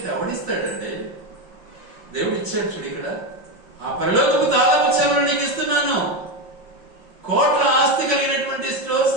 ఎవడిస్తాడంటే దేవుడు ఇచ్చాడు. చూడు ఇక్కడ, ఆ పరలోకపు తాళము చెవులు నీకు ఇస్తున్నాను. కోట్ల ఆస్తి కలిగినటువంటి స్టోర్స్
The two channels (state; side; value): late; left; 5.6 ms